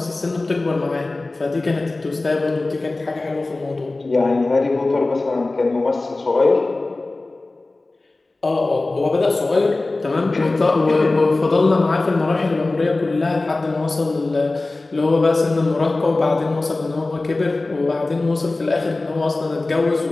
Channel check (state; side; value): quieter; right; 3.2 dB